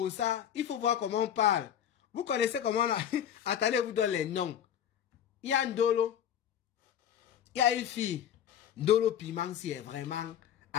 ça, il faut voir comment on parle. Vous connaissez comment on a... Attendez, vous donne les noms. Il y a Ndolo. Il y a une fille. Ndolo Piment, si elle vraiment,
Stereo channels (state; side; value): quieter; right; 9.7 dB